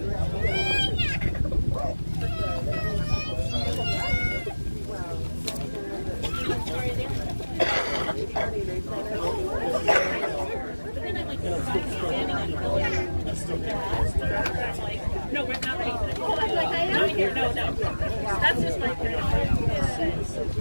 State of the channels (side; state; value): both; inverted; correlation -1.00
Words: No, we're not ready. Not here. No. That's just my